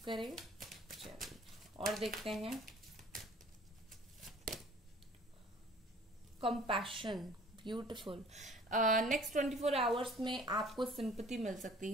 करें। चलिए और देखते हैं कंपैशन, ब्यूटीफुल। नेक्स्ट 24 आवर्स में आपको सिंपैथी मिल सकती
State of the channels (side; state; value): both; normal; correlation 0.50